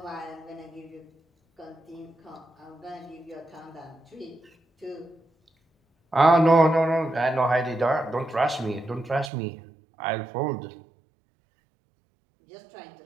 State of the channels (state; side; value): drops out; left; at 9.3 s